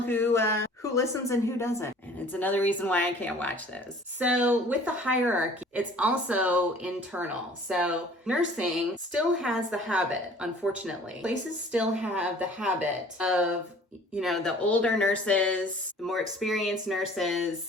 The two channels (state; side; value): normal; both; correlation 0.50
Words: who listens and who doesn't. And it's another reason why I can't watch those. So with the hierarchy, it's also internal. So nursing still has the habit, unfortunately. Places still have the habit of, you know, the older nurses, the more experienced